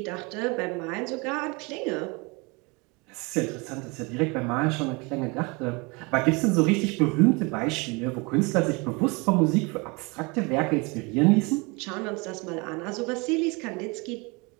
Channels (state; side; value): quieter; left; 28.0 dB